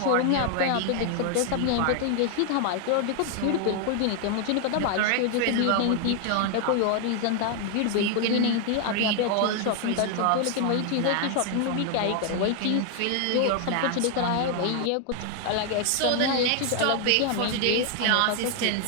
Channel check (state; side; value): different; both; correlation 0.00